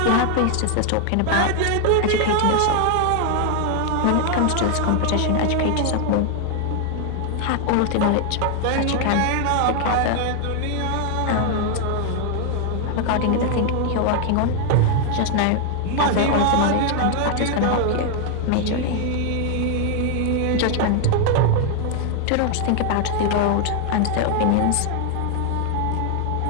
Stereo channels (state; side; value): different; both; correlation 0.00